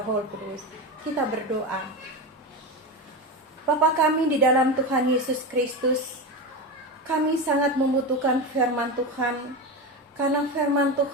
Roh Kudus. Kita berdoa. Bapa kami di dalam Tuhan Yesus Kristus, kami sangat membutuhkan firman Tuhan, karena firman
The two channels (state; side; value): normal; both; correlation 0.19